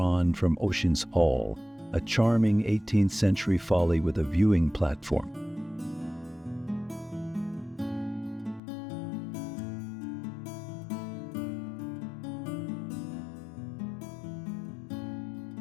from Ocean's Hall, a charming 18th century folly with a viewing platform.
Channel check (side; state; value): right; drops out; at 8.6 s